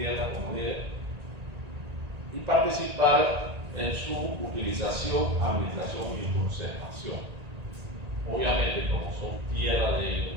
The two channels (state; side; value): late; left; 1.9 ms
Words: como dije, y participar en su utilización, administración y conservación. Obviamente, como son tierra de ellos,